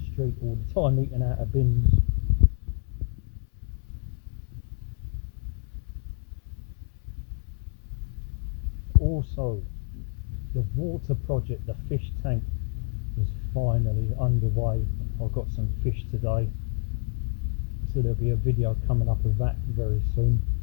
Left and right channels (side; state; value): right; silent; 59 dB below the other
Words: street all the time eating out of bins. Also, the water project, the fish tank, is finally underway. I've got some fish today, so there'll be a video coming up of that very soon.